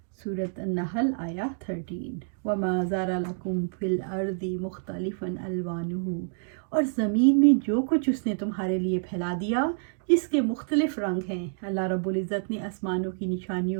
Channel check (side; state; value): left; silent; digital silence